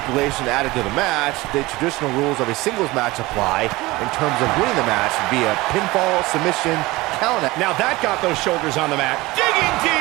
added to the match, the traditional rules of a singles match apply in terms of winning the match via pinfall, submission, count out. Now that got those shoulders on the mat. Digging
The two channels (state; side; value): quieter; left; 20.6 dB